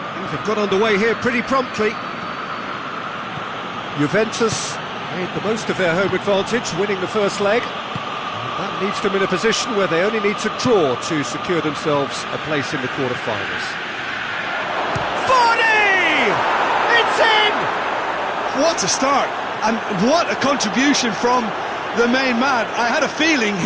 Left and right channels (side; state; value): both; identical; correlation 1.00